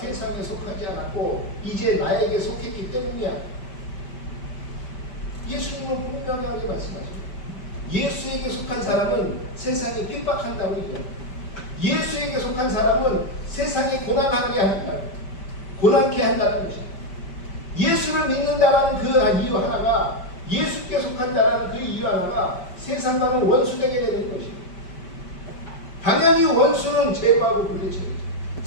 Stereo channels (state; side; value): late; right; 5.1 ms